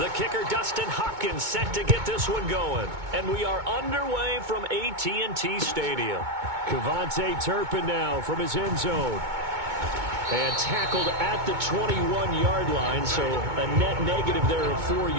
kicker, Dustin Hopkins, set to get this one going. And we are underway from AT&T Stadium. Cavante Turpin now from his end zone. And tackled at the 21-yard line, so a net negative there of 4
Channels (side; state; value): left; late; 2.2 ms